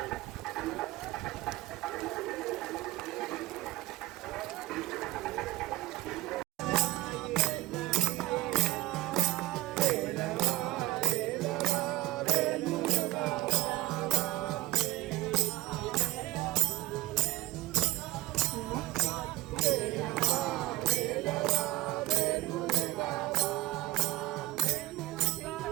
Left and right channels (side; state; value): left; quieter; 18.8 dB